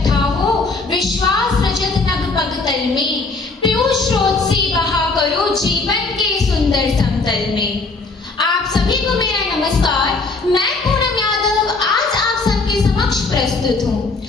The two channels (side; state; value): right; quieter; 3.7 dB